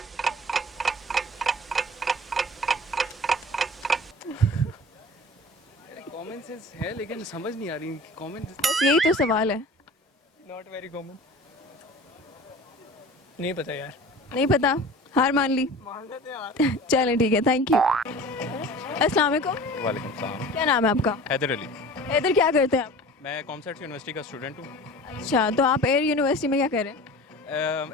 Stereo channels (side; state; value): both; normal; correlation 0.40